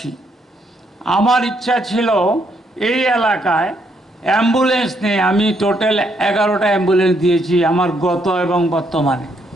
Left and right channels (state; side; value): normal; both; correlation 0.73